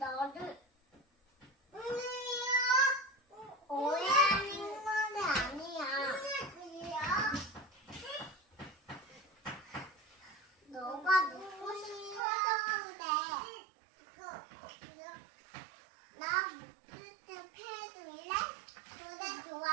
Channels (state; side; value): drops out; left; at 12.2 s